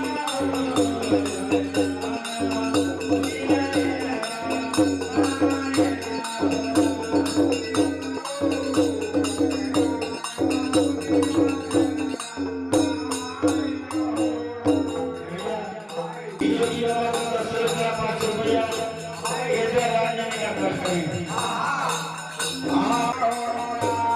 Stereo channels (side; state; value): both; identical; correlation 1.00